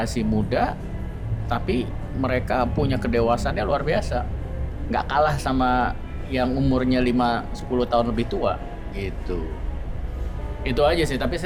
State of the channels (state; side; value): identical; both; correlation 1.00